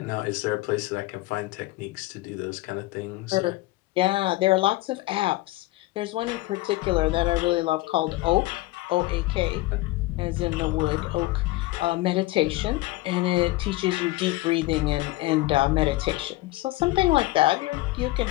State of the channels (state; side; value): quieter; right; 18.8 dB